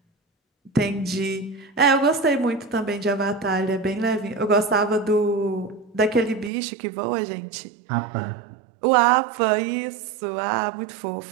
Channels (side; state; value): left; drops out; at 6.5 s